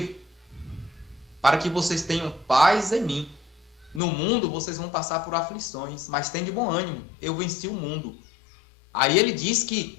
para que vocês tenham paz em mim. No mundo vocês vão passar por aflições, mas tem de bom ânimo, eu venci o mundo. Aí ele diz que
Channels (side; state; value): right; drops out; at 4.0 s